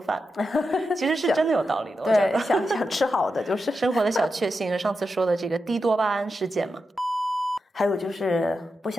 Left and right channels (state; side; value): normal; both; correlation 0.88